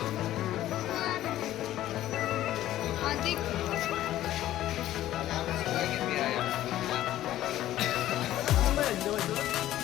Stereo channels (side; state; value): right; quieter; 13.7 dB